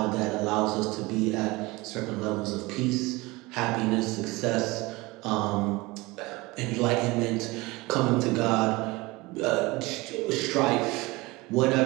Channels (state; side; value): quieter; left; 22.5 dB